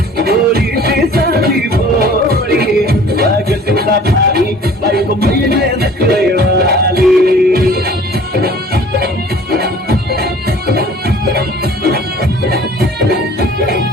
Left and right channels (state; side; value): normal; both; correlation 0.49